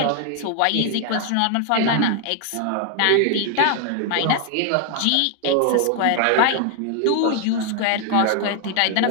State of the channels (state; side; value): different; both; correlation 0.00